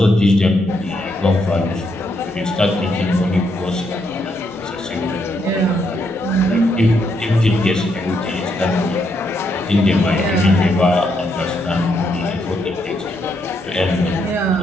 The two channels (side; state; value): both; normal; correlation 0.77